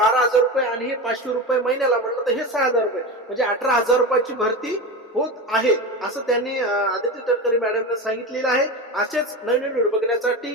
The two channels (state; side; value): normal; both; correlation 0.23